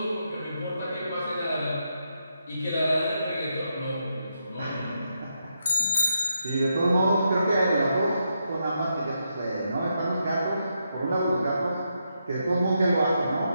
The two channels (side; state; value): both; inverted; correlation -0.82